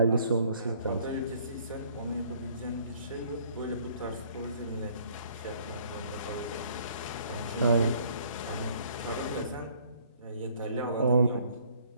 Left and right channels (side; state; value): both; inverted; correlation -0.60